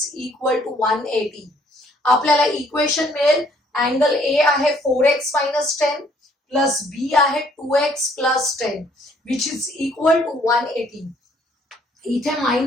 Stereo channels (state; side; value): normal; both; correlation 0.63